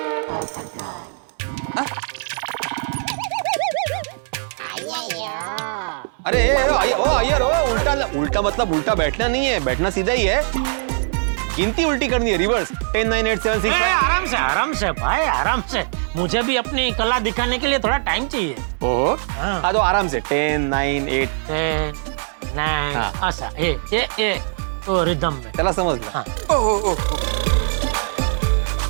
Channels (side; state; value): left; silent; digital silence